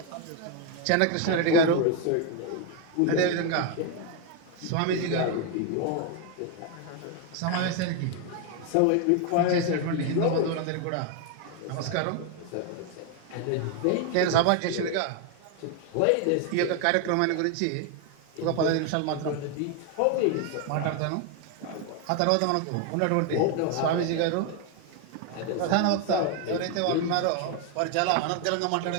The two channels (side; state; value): both; different; correlation 0.01